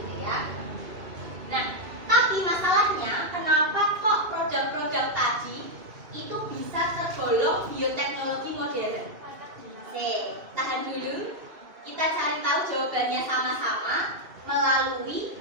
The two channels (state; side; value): late; left; 2.6 ms